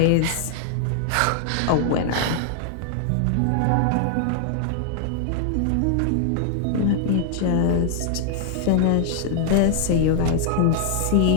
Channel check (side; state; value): both; different; correlation 0.00